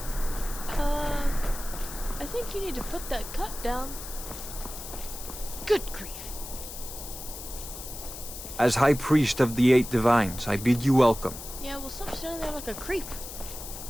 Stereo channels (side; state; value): left; noise; hiss, 10 dB below the sound